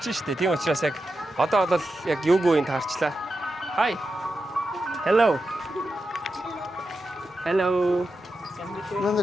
штэ. Тийм учраас яг одоо бол яг юугүй юм таарчлаа. Hi. Hello. Hello.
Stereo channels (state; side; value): normal; both; correlation 0.89